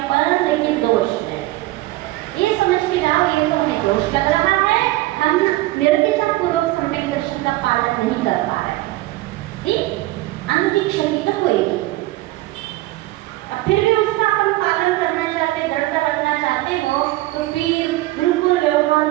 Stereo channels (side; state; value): left; quieter; 18.1 dB